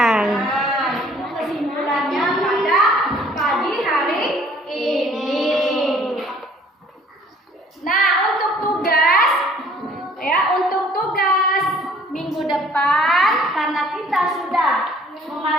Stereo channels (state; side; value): normal; both; correlation 0.57